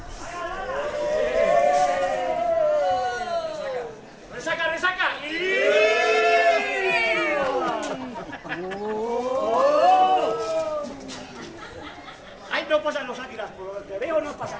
Ahí no pasan los águilas, por lo que veo no pasan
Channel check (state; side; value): identical; both; correlation 1.00